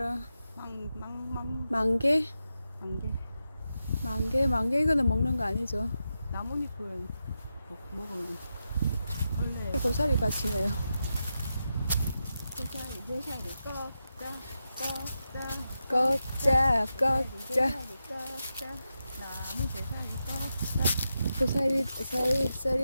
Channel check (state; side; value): inverted; both; correlation -0.89